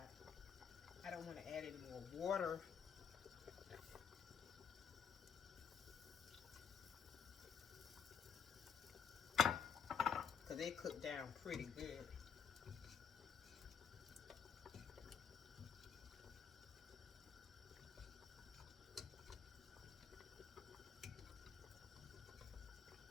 I don't want to add any more water. Because they cook down pretty good.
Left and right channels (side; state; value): right; quieter; 7.1 dB